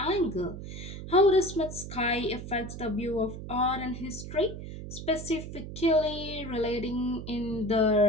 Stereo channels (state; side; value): noise; right; hum, 9 dB below the sound